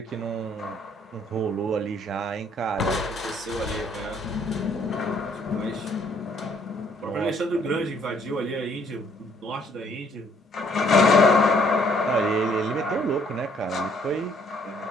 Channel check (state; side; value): normal; both; correlation 0.64